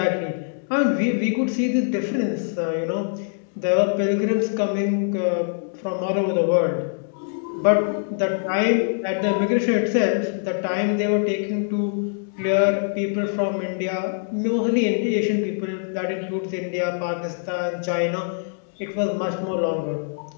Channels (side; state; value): right; silent; digital silence